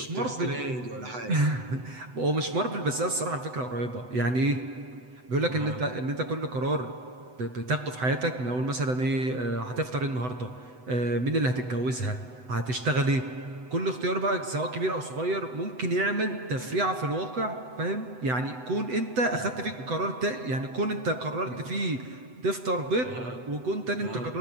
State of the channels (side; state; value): left; late; 8.0 ms